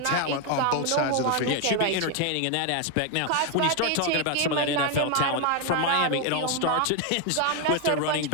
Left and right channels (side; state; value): both; different; correlation 0.01